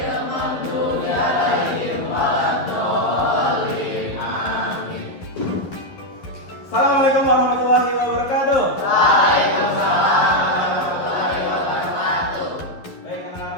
maghdubi 'alaihim waladdallin. Amin. Assalamualaikum warahmatullahi wabarakatuh. Waalaikumsalam warahmatullahi wabarakatuh. Baik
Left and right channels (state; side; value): late; right; 11 ms